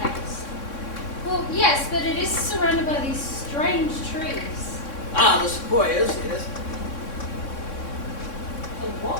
Well, yes, but it is surrounded by these strange trees. Ah, the sequoias, yes. The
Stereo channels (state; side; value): late; right; 3.6 ms